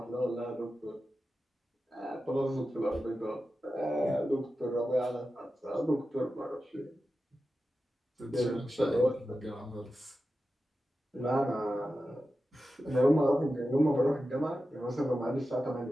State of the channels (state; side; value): normal; both; correlation 0.92